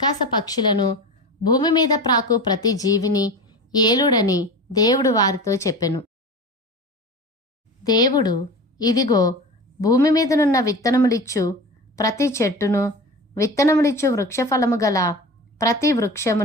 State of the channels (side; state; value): both; normal; correlation 0.31